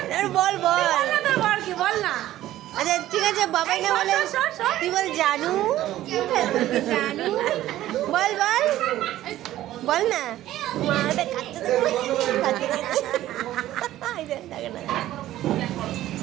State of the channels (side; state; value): left; quieter; 14.1 dB